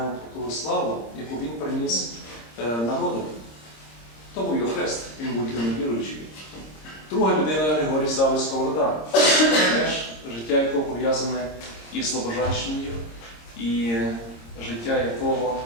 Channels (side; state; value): right; late; 26 ms